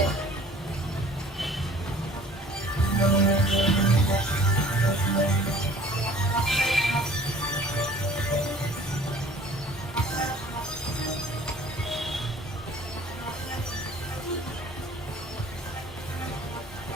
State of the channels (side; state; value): both; normal; correlation 0.51